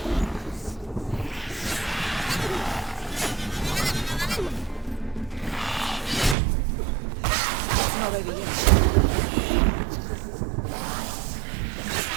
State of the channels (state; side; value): drops out; left; at 6.4 s